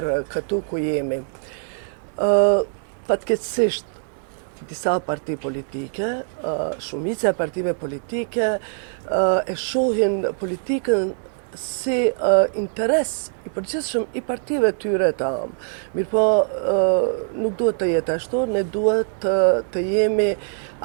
këtu ku jemi. Fatkeqësisht, disa parti politike, shumica e partive politike, e shohin politikën si interes i përgjithshëm i partive tyre të amë. Mirë po, nuk duhet të jetë ashtu, ne duhet të jemi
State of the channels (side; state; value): left; silent; digital silence